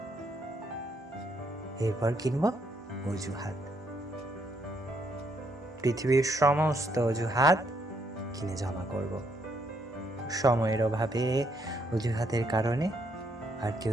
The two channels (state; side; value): normal; both; correlation 0.73